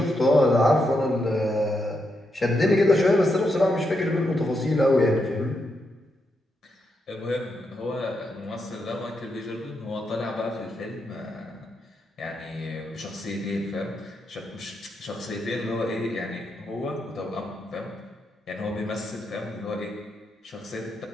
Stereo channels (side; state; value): both; normal; correlation 0.82